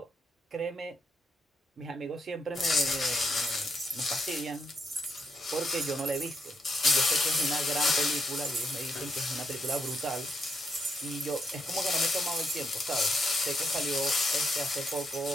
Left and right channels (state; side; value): normal; both; correlation 0.77